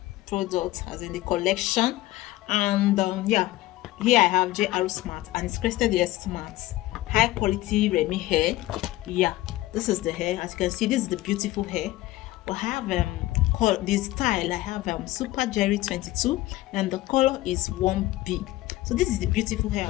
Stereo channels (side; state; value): right; quieter; 16.9 dB